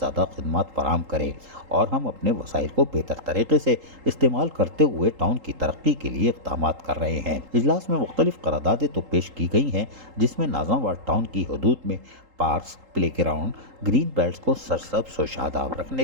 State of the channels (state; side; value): late; left; 3.8 ms